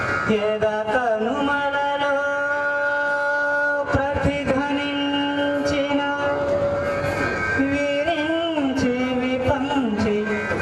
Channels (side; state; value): both; identical; correlation 1.00